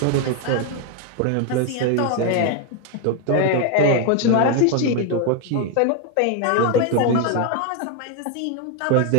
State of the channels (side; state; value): both; different; correlation 0.01